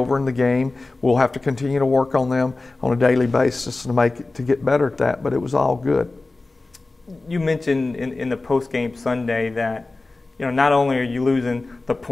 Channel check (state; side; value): quieter; right; 3.3 dB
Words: in the game. We'll have to continue to work on them on a daily basis to get better at that, but it was all good. You mentioned in the post-game Sunday that not only are you losing the